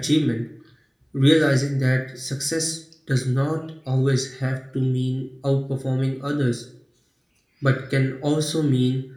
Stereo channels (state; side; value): identical; both; correlation 1.00